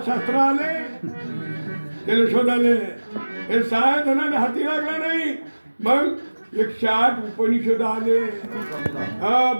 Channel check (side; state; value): both; inverted; correlation -1.00